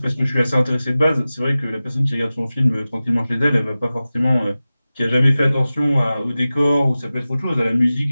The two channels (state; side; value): inverted; both; correlation -0.96